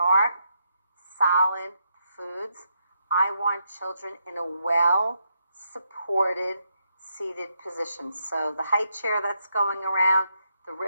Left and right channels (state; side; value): inverted; both; correlation -0.79